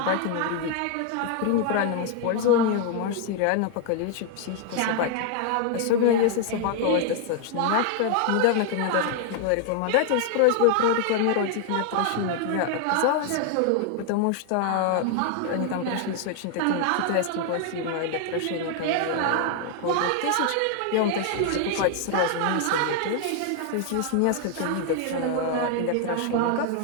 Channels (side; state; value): both; different; correlation 0.00